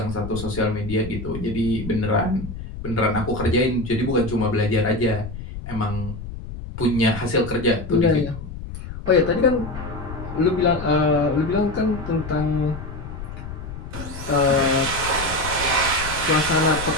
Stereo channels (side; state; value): left; noise; rumble, 10 dB below the sound